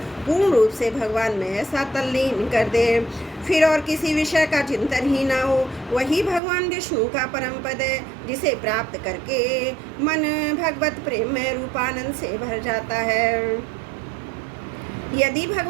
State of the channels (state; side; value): drops out; left; at 6.4 s